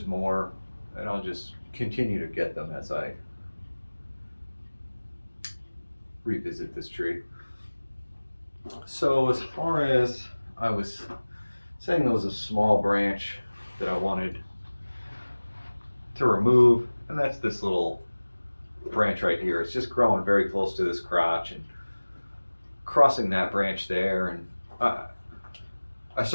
more, and I'll just continue to get them as I revisit this tree. So as far as I was saying, there was a small branch that I wanted to remove, and that's this little branch right here. It's just growing very close to this crotch, and crossing that branch there, and I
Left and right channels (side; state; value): both; inverted; correlation -1.00